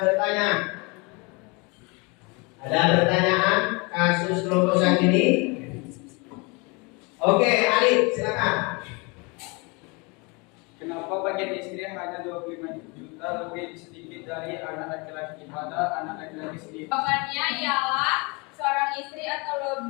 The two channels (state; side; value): quieter; right; 29.1 dB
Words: Ada pertanyaan kasus kelompok 1 ini? Oke, Alif, silakan. Kenapa bagian istri hanya 25 juta lebih sedikit dari anak laki-laki pada anak laki-laki sendiri? Jawabannya ialah seorang istri atau